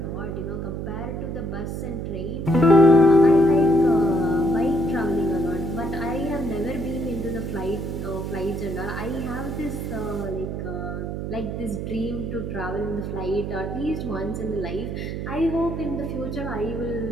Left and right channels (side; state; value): right; noise; hum, 4 dB below the sound